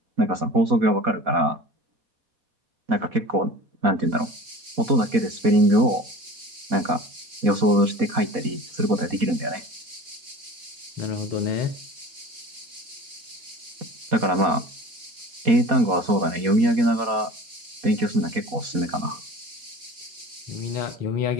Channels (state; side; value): late; left; 4.2 ms